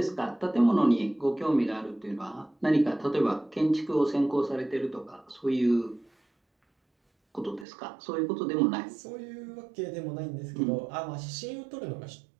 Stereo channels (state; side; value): drops out; left; at 7.7 s